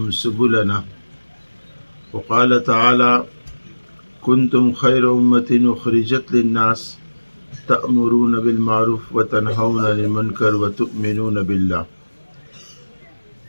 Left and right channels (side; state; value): both; inverted; correlation -1.00